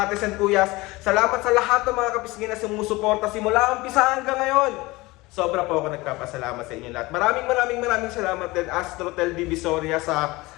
ates and kuyas. Salamat sa lahat ng mga kapisngin na sumusuporta simula umpisa hanggang ngayon. Sobra po ako nagpapasalamat sa inyo lahat. Maraming salamat din Astrotel Divisoria sa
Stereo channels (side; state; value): right; quieter; 21.5 dB